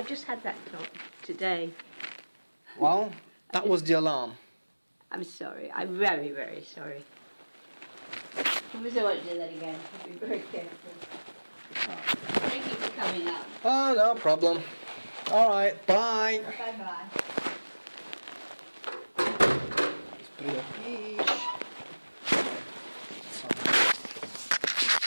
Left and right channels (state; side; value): inverted; both; correlation -1.00